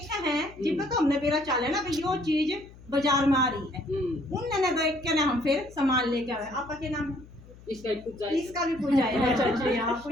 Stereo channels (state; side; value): noise; left; hum, 21 dB below the sound